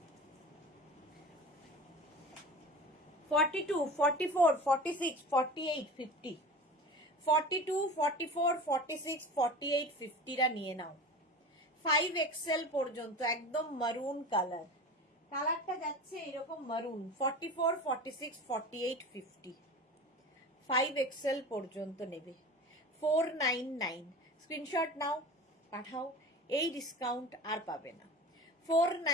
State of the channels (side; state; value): both; normal; correlation 0.34